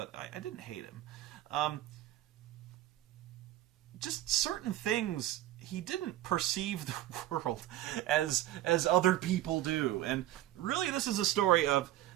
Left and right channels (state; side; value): quieter; left; 14.0 dB